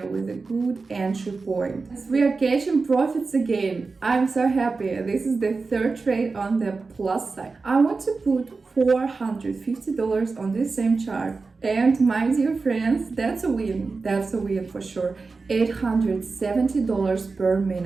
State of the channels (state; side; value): quieter; left; 4.2 dB